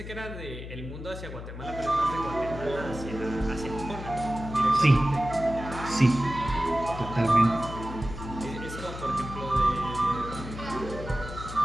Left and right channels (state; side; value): noise; left; hum, 10 dB below the sound